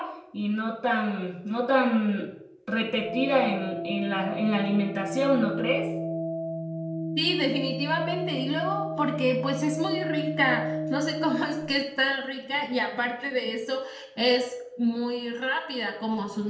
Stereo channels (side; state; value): both; identical; correlation 1.00